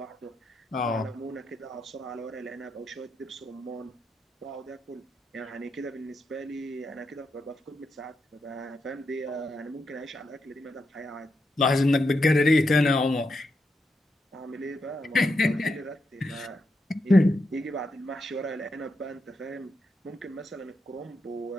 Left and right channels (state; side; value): normal; both; correlation 0.84